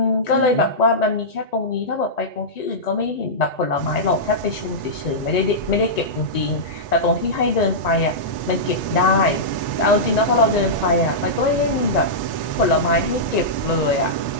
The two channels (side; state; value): right; late; 1.9 ms